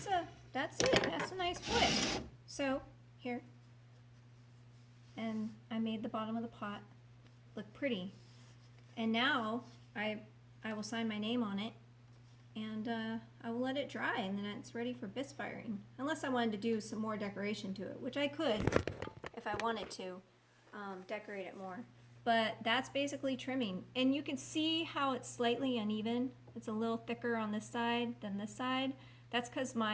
it. That's a nice flip. So here, and I made the bottom of the pot look pretty. And now I will sign my name on it, and I will let it dry, and then it's ready for bisque firing. Unless I wanted to do some more decoration to it, which I could if I wanted to decorate it more. But that's basically trimming. And you can see how it's slightly uneven. It's a little thicker on this side than this side. That's because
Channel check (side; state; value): both; identical; correlation 1.00